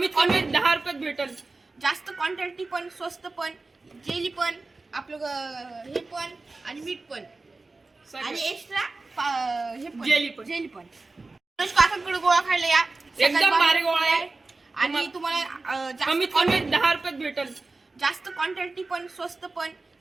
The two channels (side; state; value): left; quieter; 3.5 dB